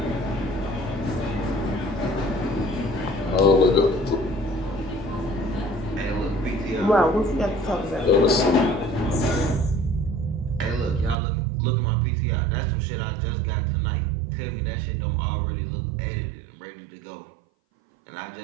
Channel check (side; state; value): left; drops out; at 11.2 s